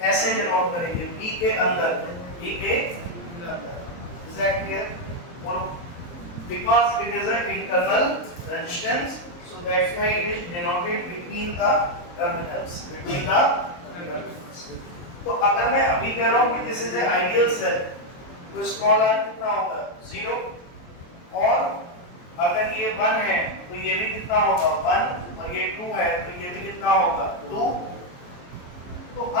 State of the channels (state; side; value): late; right; 23 ms